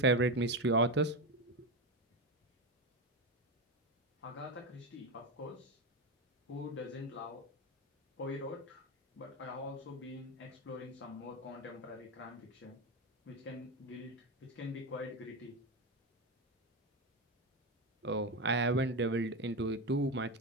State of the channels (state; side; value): normal; both; correlation 0.15